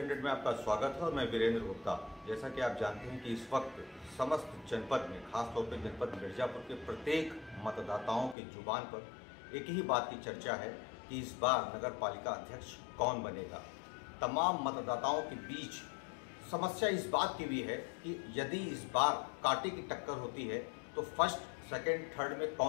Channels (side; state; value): right; drops out; at 8.3 s